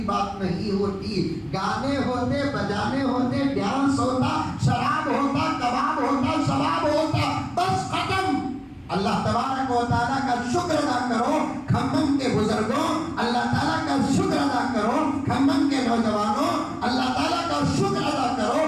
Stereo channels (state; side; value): identical; both; correlation 1.00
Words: نہیں ہوتی. گانے ہوتے, بجانے ہوتے, ڈانس ہوتا, شراب ہوتا, کباب ہوتا, شباب ہوتا, بس ختم. اللہ تبارک و تعالیٰ کا شکر ادا کرو کھمم کے بزرگوں, اللہ تعالیٰ کا شکر ادا کرو کھمم کے نوجوانوں, اللہ تعالیٰ کا شکر ادا کرو